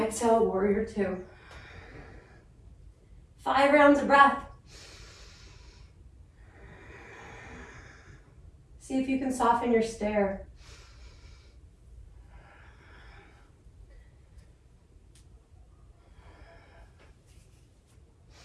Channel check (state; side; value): identical; both; correlation 1.00